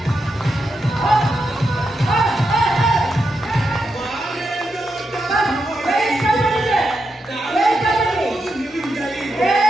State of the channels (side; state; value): both; normal; correlation 0.85